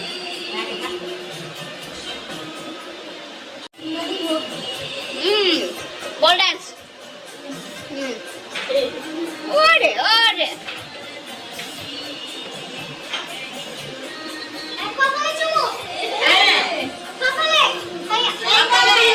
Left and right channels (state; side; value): identical; both; correlation 1.00